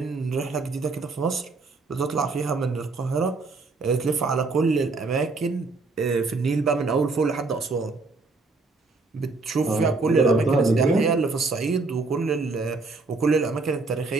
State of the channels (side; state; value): left; quieter; 3.8 dB